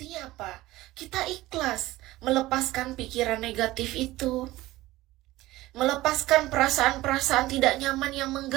apa? Kita ikhlas melepaskan pikiran negatif itu. Melepaskan perasaan-perasaan tidak nyaman yang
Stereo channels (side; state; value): left; quieter; 17.6 dB